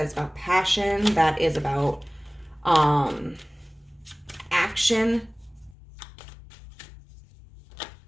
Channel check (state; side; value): drops out; right; at 5.8 s